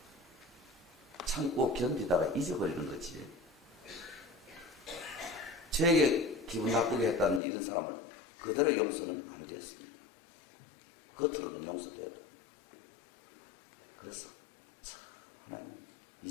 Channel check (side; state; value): right; drops out; at 7.4 s